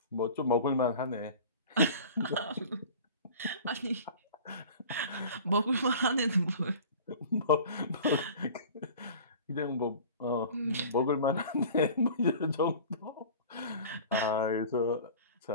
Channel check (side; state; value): both; inverted; correlation -0.41